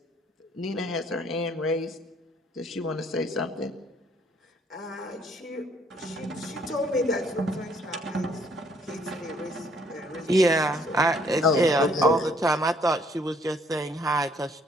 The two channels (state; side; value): normal; both; correlation 0.64